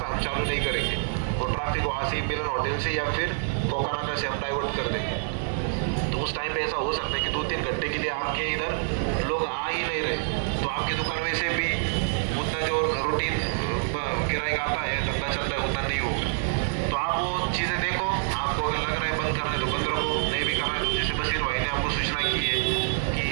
हम चालू नहीं करेंगे, वो ट्रैफिक वहाँ से मिलन होटल से या फिर कोकानाका से हम डाइवर्ट कर देंगे। तो उस टाइम पे ऐसा हो सकता है कि 2-3 घंटे के लिए आपके इधर लोग आ ही नहीं रहे, तो आपकी दुकान वैसे भी उतना जो रूटीन किराया आता है धंधा चलता है उतना नहीं होगा। तो आप वो चीज़ें देखो, आपको अगर लग रहा है बंद करने तो बंद रखो, नहीं भी करना है जैसे बशीर भाई ने आपको सूचना की है कि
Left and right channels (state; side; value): silent; left; digital silence